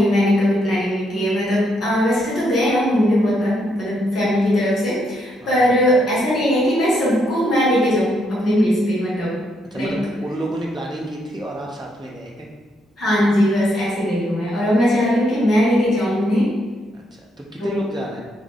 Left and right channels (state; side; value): normal; both; correlation 0.76